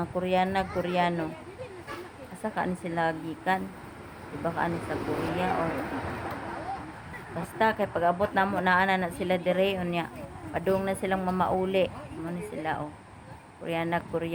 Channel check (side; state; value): both; identical; correlation 1.00